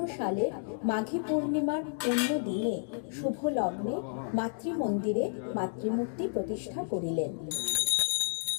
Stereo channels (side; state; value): right; silent; digital silence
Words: সালের মাঘী পূর্ণিমার পুণ্য দিনে শুভ লগ্নে মাতৃমন্দিরে মাতৃমূর্তি প্রতিষ্ঠা করিলেন।